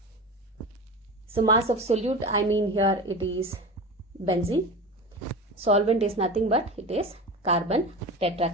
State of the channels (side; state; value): both; normal; correlation 0.29